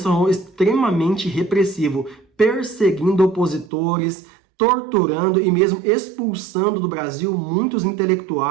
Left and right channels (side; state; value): left; drops out; at 3.7 s